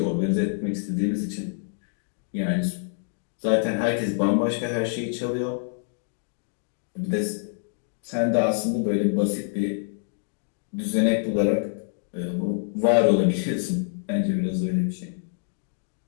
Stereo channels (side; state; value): right; silent; digital silence